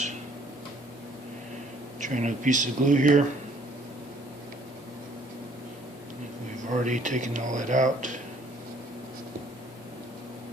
Try another piece of glue here. We've already taken all that out.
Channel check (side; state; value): both; normal; correlation 0.60